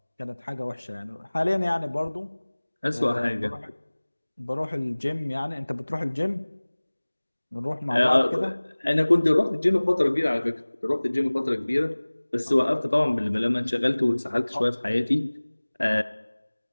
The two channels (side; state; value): both; inverted; correlation -1.00